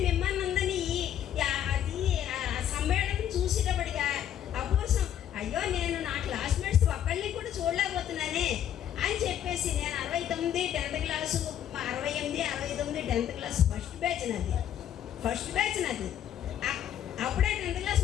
మిమ్మల్ని అందరినీ అది సమ్మేళనం చూసేటప్పటిగా అపూర్వం, అయ్యో నేను నా క్లాస్మేట్స్ ఒక్కళ్ళని కూడా చూడలేకపోతున్నానే అని చెప్పేసి నేను 69 10th class 68 69 10th class first batch నాది. అప్పుడే 10th క్లాస్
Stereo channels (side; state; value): right; quieter; 10.3 dB